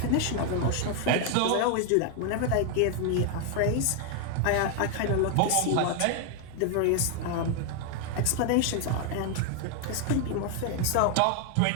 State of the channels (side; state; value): both; different; correlation 0.00